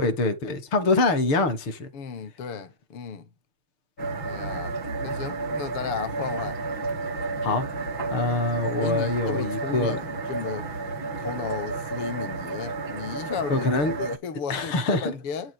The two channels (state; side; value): late; right; 6.6 ms